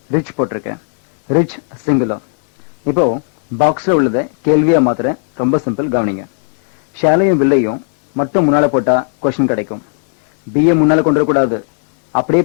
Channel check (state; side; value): silent; right; 65 dB below the other